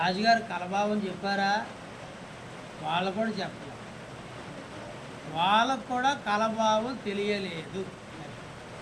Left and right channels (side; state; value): both; identical; correlation 1.00